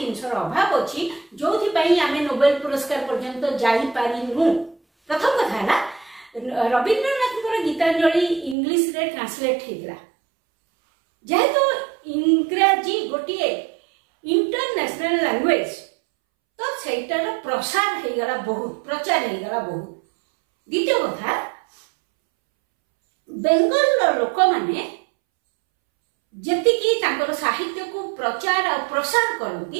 अभाव अछि जोथि पई आमे नोबेल पुरस्कार पर्यंत जाई पारिनु। प्रथम कथा हला रविंद्रनाथ गीतांजलि इंग्लिश रे ट्रांसलेट हेतिला। जेहेतु इंग्रजी गोटे इंटरनेशनल लैंग्वेज तो सेटार प्रसार हे गला बहुत, प्रचार हे गला बहुत। द्वितीय कथा बेंगल लोक माने जतिकी तांकर साहित्य को प्रचार और प्रसार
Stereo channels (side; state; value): left; drops out; at 8.6 s